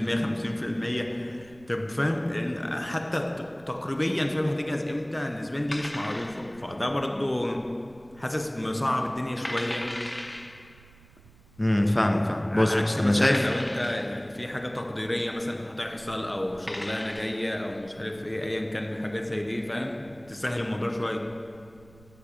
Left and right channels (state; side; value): noise; right; rumble, 25 dB below the sound